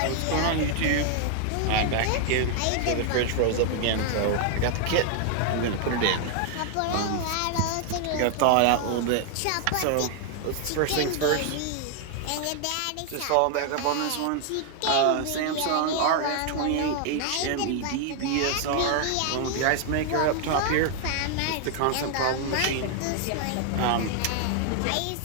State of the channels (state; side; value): different; both; correlation 0.00